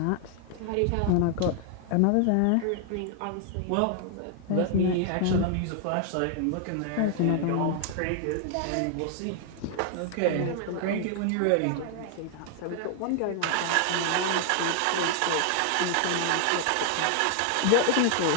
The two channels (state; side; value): different; both; correlation 0.00